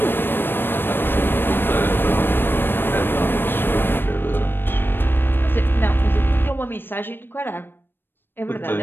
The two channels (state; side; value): late; right; 0.098 ms